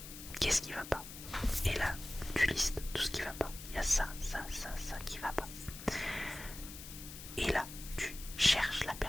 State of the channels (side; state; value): left; noise; hiss, 12 dB below the sound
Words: qu'est-ce qui va pas, et là tu listes tout ce qui va pas, il y a ça qui va pas, et là tu cherches la